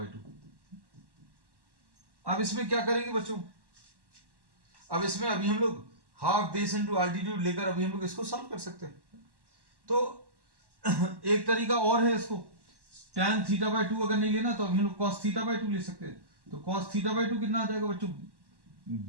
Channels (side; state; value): left; late; 1.1 ms